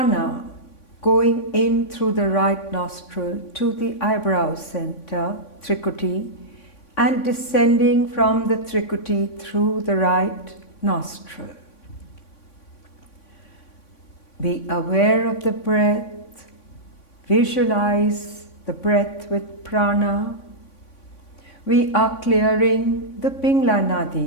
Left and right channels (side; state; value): right; late; 3.5 ms